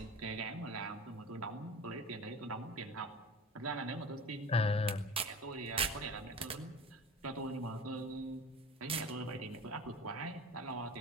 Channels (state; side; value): normal; both; correlation 0.35